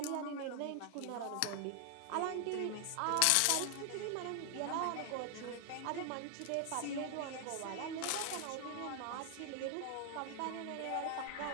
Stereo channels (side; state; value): both; different; correlation 0.00